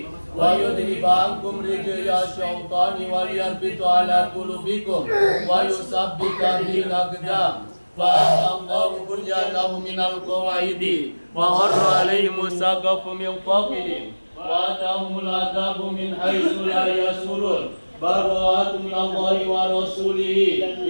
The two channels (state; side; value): inverted; both; correlation -1.00